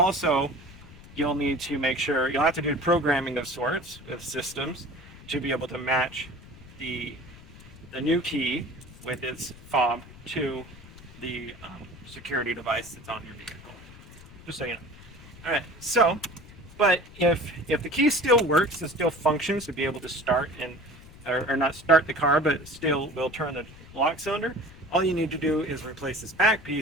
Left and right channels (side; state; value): left; noise; rumble, 19 dB below the sound